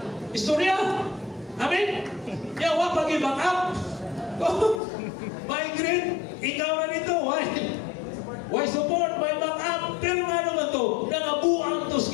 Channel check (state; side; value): drops out; right; at 4.8 s